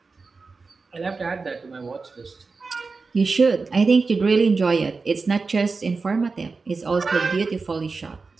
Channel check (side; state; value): left; quieter; 4.3 dB